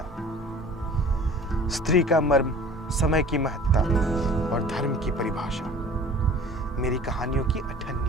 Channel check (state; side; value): normal; both; correlation 0.45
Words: स्त्री का मर्म, समय की महत्ता और धर्म की परिभाषा मेरी कहानियों की